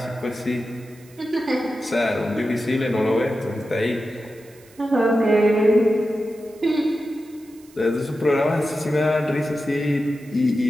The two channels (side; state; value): right; noise; hiss, 27 dB below the sound